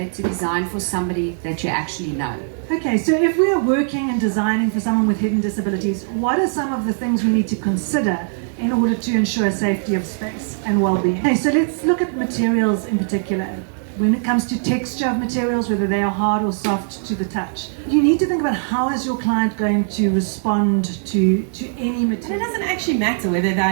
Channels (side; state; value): left; silent; 66 dB below the other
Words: to design for somebody that you actually know. Okay, so if we are working and designing for someone with hidden disabilities, what are some of the things we need to consider in order to ensure safety of space and well-being? Okay, so let's look at materials in particular. When it comes to texture of materials, whether they are hard or soft to the touch, you need to think about how is your client going to respond to any material. And it doesn't actually matter whether they